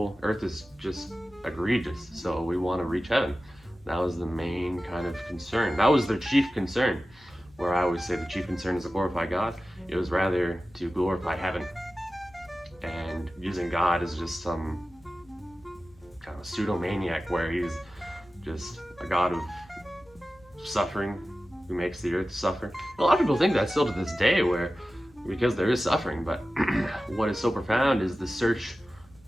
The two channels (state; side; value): noise; left; hum, 28 dB below the sound